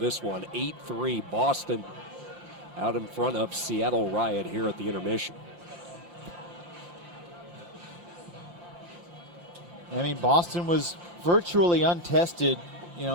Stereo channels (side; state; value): left; late; 5.8 ms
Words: one. 8-3 Boston out in front of Seattle Riot here at the intermission. I mean, Boston was virtually untested,